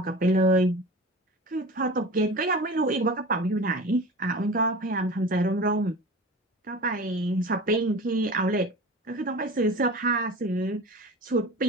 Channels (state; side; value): normal; both; correlation 0.35